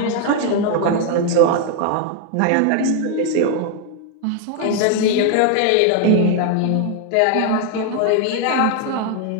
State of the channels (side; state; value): both; different; correlation 0.00